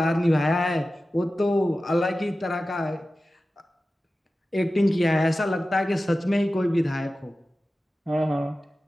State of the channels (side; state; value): both; normal; correlation 0.95